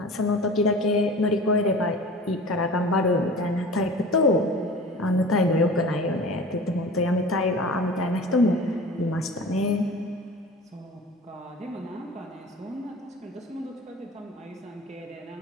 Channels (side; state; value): both; normal; correlation 0.39